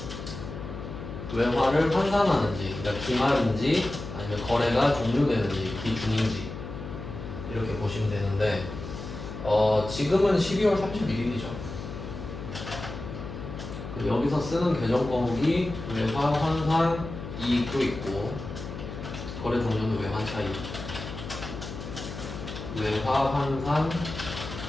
외화를 환산하는지, 그러니까 기말인지 아니면 거래가 종료되는지 기중인지 이렇게 보시면 되는데 지금은 12월 31일이죠. 여기서 쓰는 계정 과목이 외화 환산 이익도 있고 거래 종료는 외환 차익, 외화 환산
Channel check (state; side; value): noise; left; hum, 9 dB below the sound